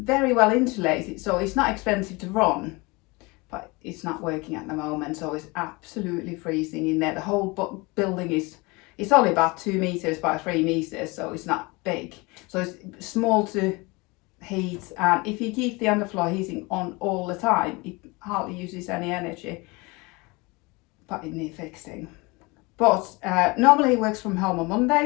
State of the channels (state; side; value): quieter; right; 25.6 dB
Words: well insulated, so it's not expensive to run, but it's not working at the moment, so it's absolutely freezing in there. The whole building it's only about 2 meters by 3 meters, so it's not big. So it's small to heat, and if you keep the underfloor heating on all the time, it hardly uses any energy, but it needs fixing. But normally he works from home on